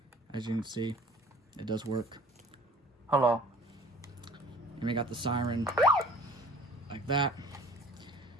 As you can see, it does work. Hello. And we got the siren like that.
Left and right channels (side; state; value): both; normal; correlation 0.49